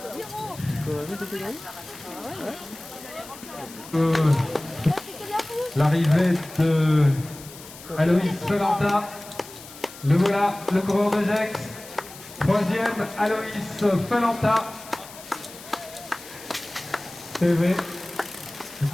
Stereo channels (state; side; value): noise; left; hiss, 17 dB below the sound